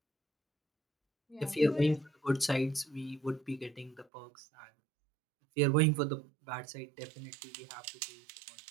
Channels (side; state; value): left; drops out; at 4.0 s